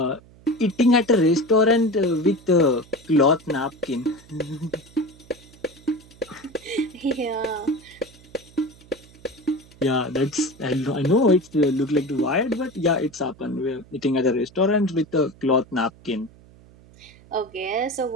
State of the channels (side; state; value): right; noise; hum, 24 dB below the sound